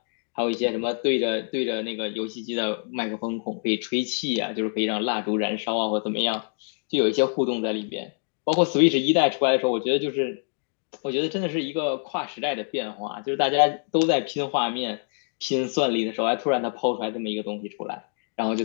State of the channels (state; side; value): silent; right; digital silence